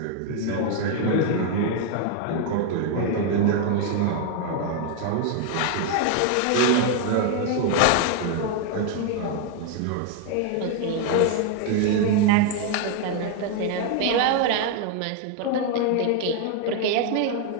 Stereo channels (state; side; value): different; both; correlation 0.01